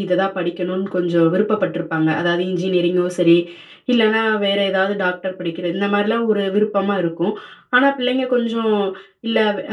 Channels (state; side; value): identical; both; correlation 1.00